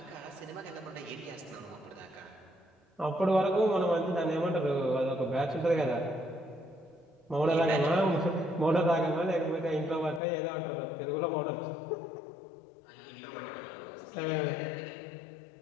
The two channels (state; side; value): drops out; right; at 10.2 s